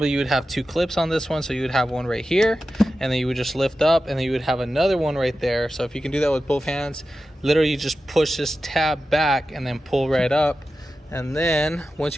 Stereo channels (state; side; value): normal; both; correlation 0.92